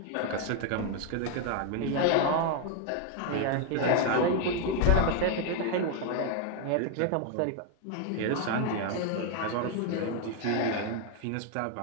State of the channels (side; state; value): both; different; correlation 0.01